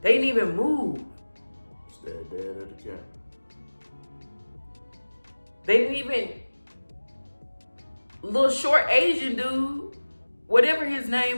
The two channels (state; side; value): inverted; both; correlation -1.00